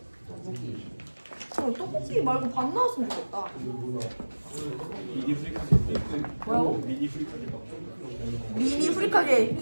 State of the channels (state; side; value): inverted; both; correlation -1.00